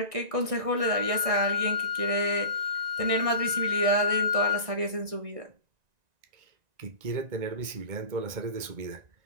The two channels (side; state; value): left; late; 1.9 ms